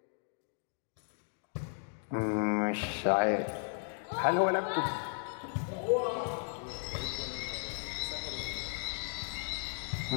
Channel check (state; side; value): silent; right; 54 dB below the other